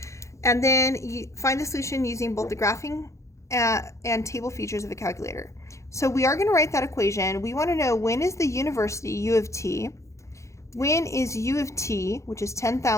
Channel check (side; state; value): right; late; 0.14 ms